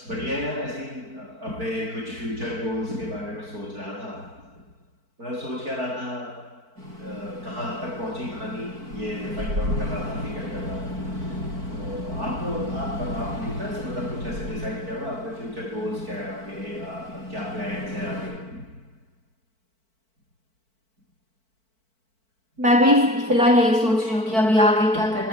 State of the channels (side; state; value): left; late; 4.5 ms